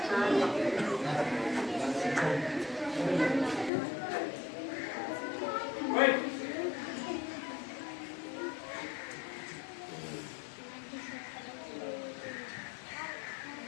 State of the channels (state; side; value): drops out; right; at 3.7 s